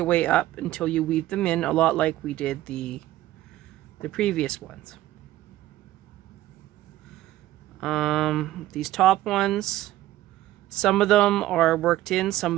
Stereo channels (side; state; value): left; quieter; 15.1 dB